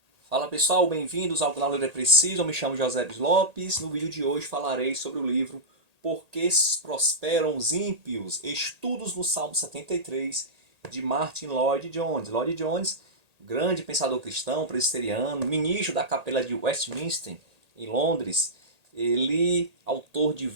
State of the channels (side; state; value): left; late; 1.8 ms